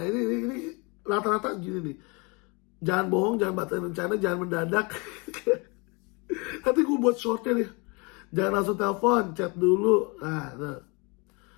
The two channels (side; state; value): right; quieter; 29.4 dB